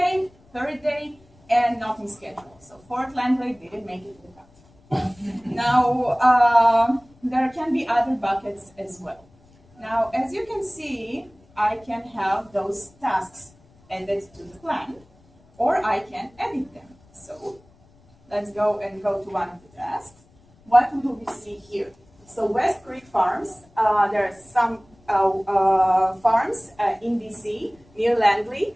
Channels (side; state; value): left; noise; rumble, 30 dB below the sound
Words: third day, and nothing scheduled. So fourth landlady didn't make it to the cut. Now, there can be other buckets as well. Now, as you can see, I can have those tasks added to the plan, or I can edit them. So let's go to one of the tasks. What do we see here? So West Creek Farms, there are some farms in DC near Langley,